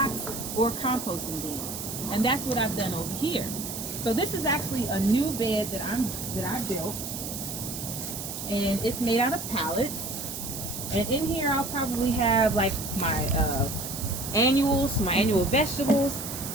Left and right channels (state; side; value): noise; right; hiss, 7 dB below the sound